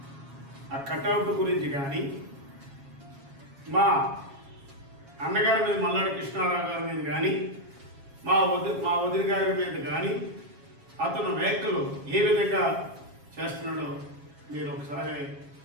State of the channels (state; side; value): late; left; 7.3 ms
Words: ఆ కటౌట్ గురించి కానీ మా అన్నగారి మీద మల్లాడి కృష్ణారావు గారి మీద కానీ మా వదిన గారి మీద కానీ అతను వ్యాఖ్యలు ఏ విధంగా చేస్తున్నాడో మీరు ఒకసారి